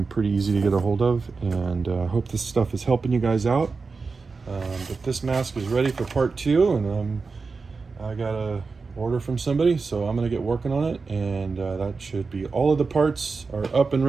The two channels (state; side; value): quieter; left; 4.5 dB